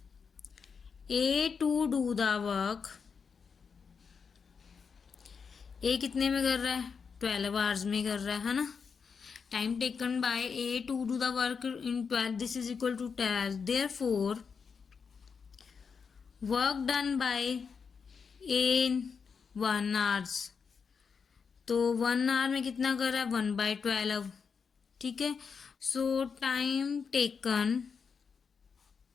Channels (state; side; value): quieter; right; 5.9 dB